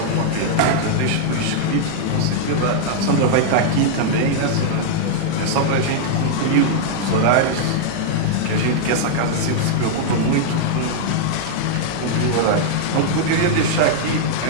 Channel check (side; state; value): both; different; correlation -0.01